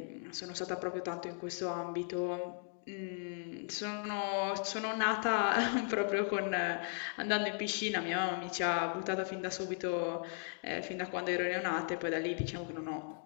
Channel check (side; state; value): right; silent; 53 dB below the other